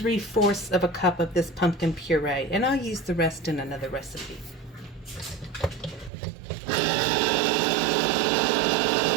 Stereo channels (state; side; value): drops out; left; at 6.1 s